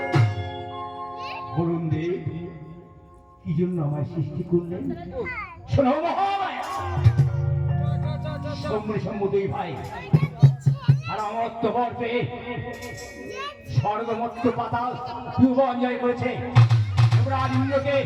বলুন দেব কি জন্য আমায় সৃষ্টি করলেন? শোনো মহামায়া, শম্ভু দুই ভাই আর অমরত্ব বর পেয়ে স্বর্গমত্ত পাতাল ভুবন জয় করেছে। দেবরাজ ইন্দ্রকে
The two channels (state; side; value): identical; both; correlation 1.00